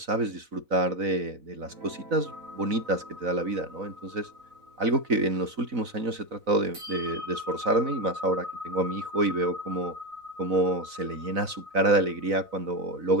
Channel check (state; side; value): late; left; 4.0 ms